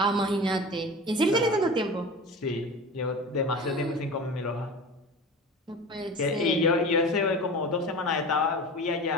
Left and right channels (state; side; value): normal; both; correlation 0.34